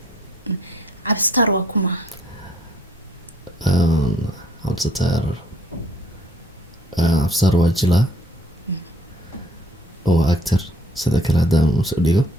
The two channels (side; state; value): both; normal; correlation 0.62